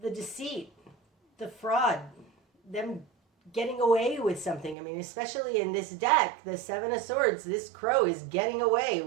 the deceit, the fraud, them getting away with something. I mean, especially in this deck, the Seven of Swords, this crow is getting away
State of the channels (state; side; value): drops out; left; at 4.8 s